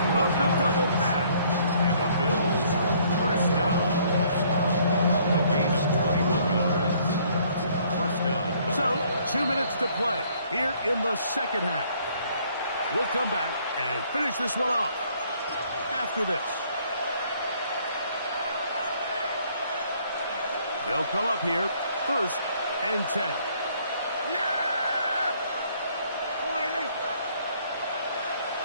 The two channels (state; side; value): inverted; both; correlation -0.63